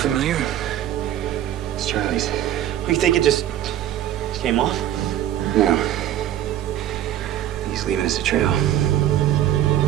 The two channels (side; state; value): left; quieter; 11.9 dB